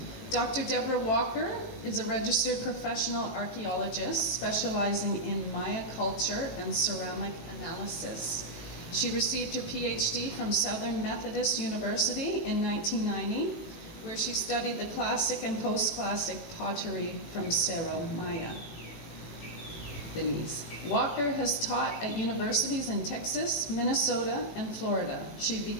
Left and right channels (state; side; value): late; right; 18 ms